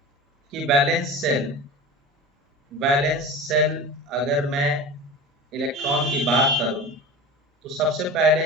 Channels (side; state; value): both; normal; correlation 0.32